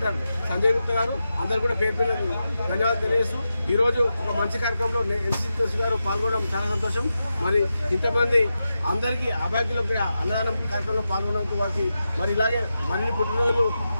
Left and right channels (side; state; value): both; inverted; correlation -0.90